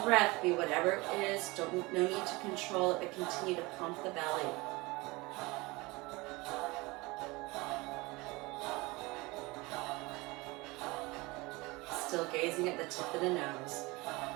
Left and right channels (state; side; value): quieter; left; 23.5 dB